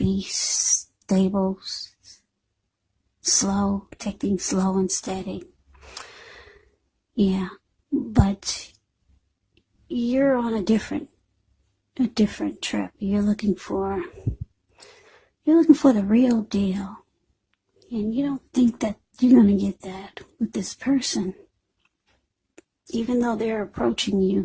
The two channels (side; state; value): both; identical; correlation 1.00